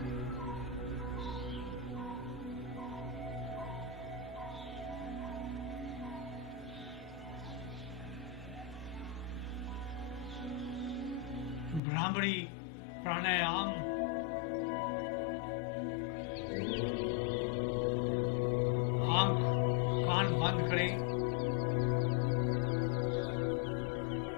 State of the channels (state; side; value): drops out; right; at 11.8 s